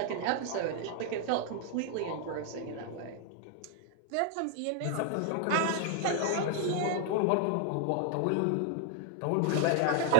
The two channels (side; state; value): both; different; correlation 0.00